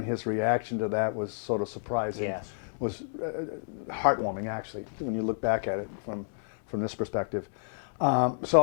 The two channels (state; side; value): silent; right; digital silence